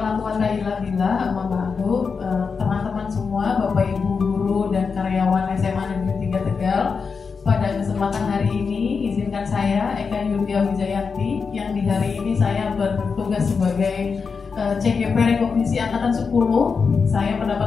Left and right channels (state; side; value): quieter; right; 5.3 dB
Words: quwata illa billah. Amma ba'du. Teman-teman semua, Bapak Ibu guru dan karyawan SMA Negeri 3 Tegal, pada kesempatan hari ini izinkan saya Eka Yulia Wijayanti yang di hari ini saya bertugas sebagai CGP Rekognisi Angkatan 10. Saya